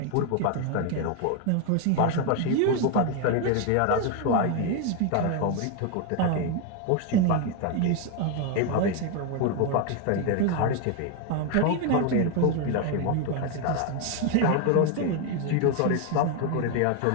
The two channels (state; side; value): different; both; correlation 0.01